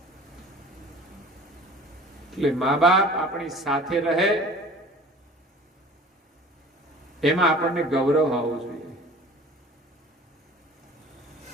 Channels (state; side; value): normal; both; correlation 0.44